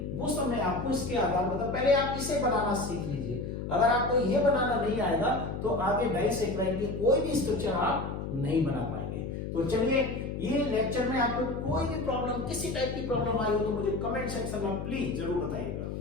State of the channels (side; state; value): left; noise; hum, 5 dB below the sound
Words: वो सब मैं आपको इसके आधार पर पहले आप इसे बनाना सीख लीजिए। अगर आपको ये बनाना नहीं आएगा तो आगे डाइसैकेराइड की कोई भी स्ट्रक्चर आप नहीं बना पाएंगे। तो चलिए, ये लेक्चर में आपको कोई भी प्रॉब्लम, किसी टाइप की प्रॉब्लम आई हो तो मुझे कमेंट सेक्शन में प्लीज जरूर बताइएगा।